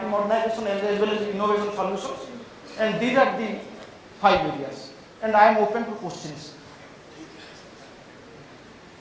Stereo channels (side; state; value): both; identical; correlation 1.00